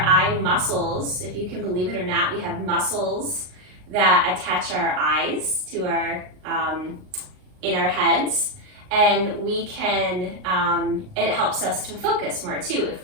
eye muscles. If you can believe it or not, we have muscles that attach our eyes to our, in our heads. And we can, it helps us to focus more too if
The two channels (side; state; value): left; late; 39 ms